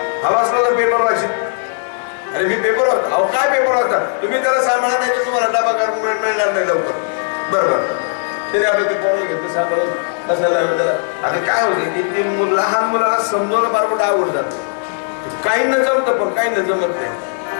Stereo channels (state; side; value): silent; right; digital silence